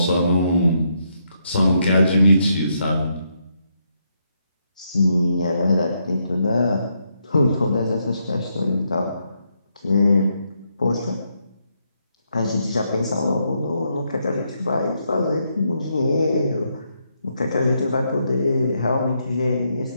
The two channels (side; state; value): both; inverted; correlation -0.78